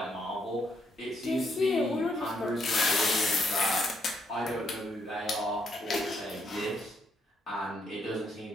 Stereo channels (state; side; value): normal; both; correlation 0.75